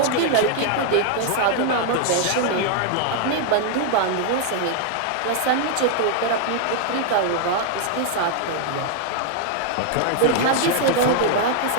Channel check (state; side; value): different; both; correlation 0.00